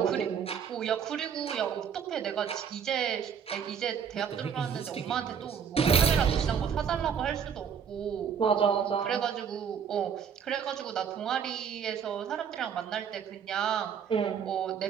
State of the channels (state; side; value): quieter; left; 7.4 dB